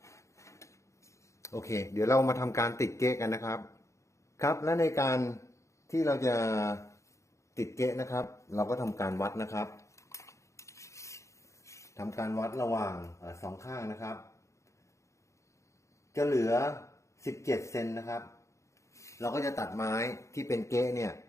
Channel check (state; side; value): late; right; 0.14 ms